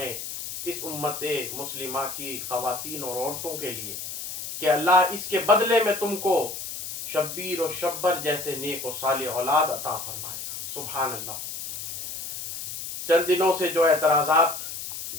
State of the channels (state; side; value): noise; left; hiss, 8 dB below the sound